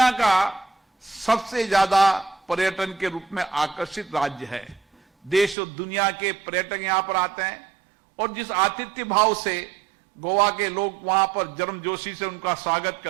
का सबसे ज्यादा पर्यटन के रूप में आकर्षित राज्य है। देश और दुनिया के पर्यटक यहां पर आते हैं और जिस आतिथ्य भाव से गोवा के लोग वहां पर गर्मजोशी से उनका स्वागत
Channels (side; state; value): left; drops out; at 5.6 s